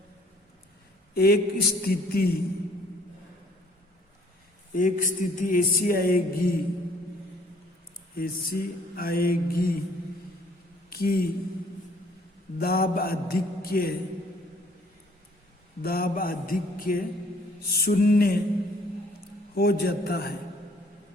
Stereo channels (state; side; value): normal; both; correlation 0.59